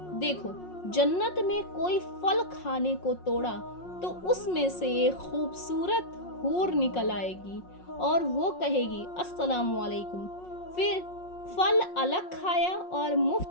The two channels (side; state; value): right; late; 5.5 ms